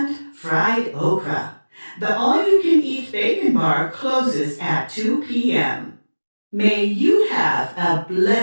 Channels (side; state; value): both; inverted; correlation -1.00